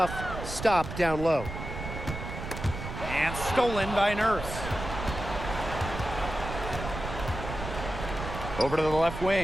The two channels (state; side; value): noise; right; rumble, 7 dB below the sound